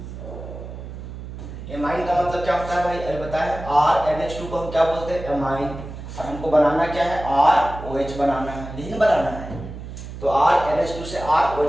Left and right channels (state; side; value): noise; right; hum, 11 dB below the sound